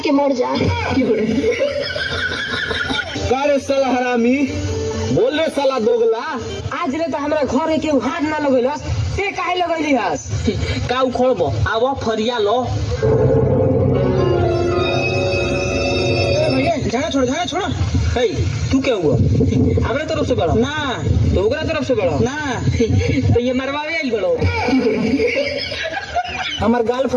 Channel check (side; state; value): both; identical; correlation 1.00